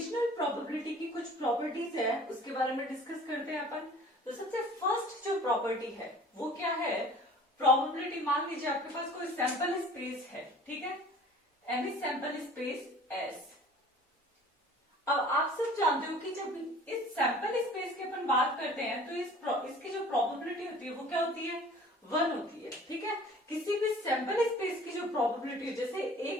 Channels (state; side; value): normal; both; correlation 0.47